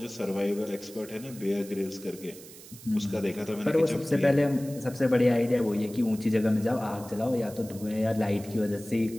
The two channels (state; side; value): noise; right; hiss, 18 dB below the sound